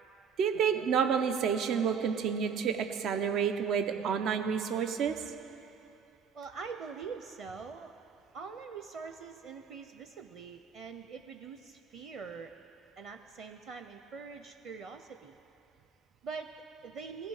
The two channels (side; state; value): left; quieter; 6.7 dB